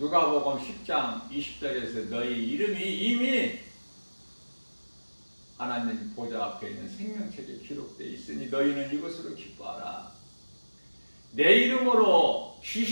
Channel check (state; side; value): inverted; both; correlation -1.00